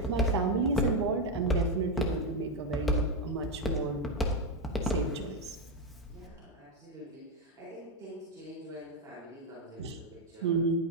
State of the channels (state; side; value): normal; both; correlation 0.04